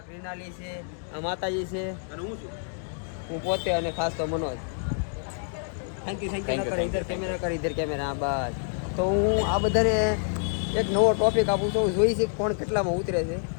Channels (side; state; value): right; silent; digital silence